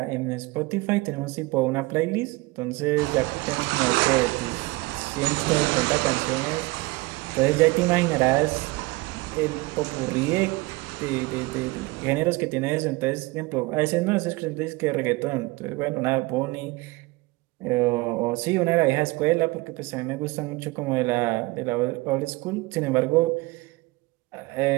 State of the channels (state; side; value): quieter; left; 22.7 dB